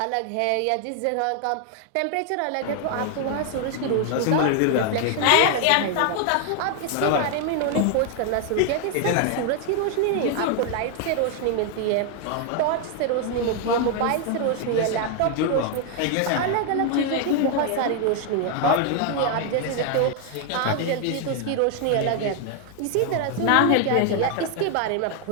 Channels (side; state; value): both; different; correlation 0.00